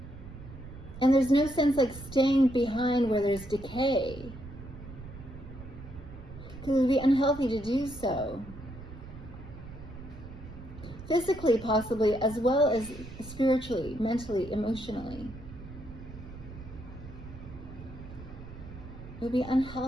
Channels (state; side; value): noise; right; rumble, 14 dB below the sound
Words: And there's no sense like staying behind where there's decay. Because it would be unhealthy to do so. Physically, possibly, as well as spiritually, mentally, emotionally. It would be